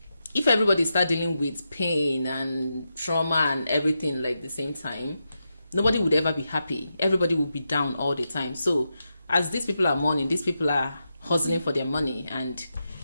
if everybody start dealing with pain and trauma and everything like the same time, nobody would ever be happy. Everybody would be down all the time. So as these people are mourning, these people are hustling for their money, and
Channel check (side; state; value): both; inverted; correlation -0.87